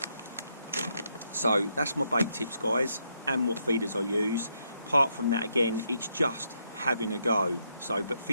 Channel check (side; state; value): both; inverted; correlation -0.78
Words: So that's my bait tips, guys, and what feeders I use. Apart from that, again, it's just having a go. So, but